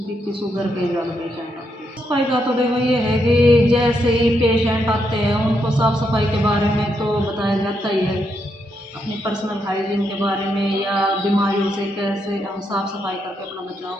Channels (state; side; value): normal; both; correlation 0.79